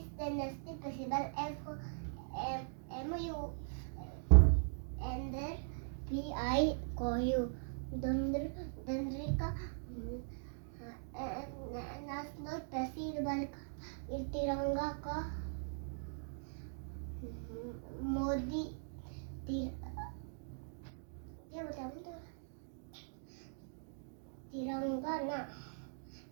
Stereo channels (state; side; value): silent; left; digital silence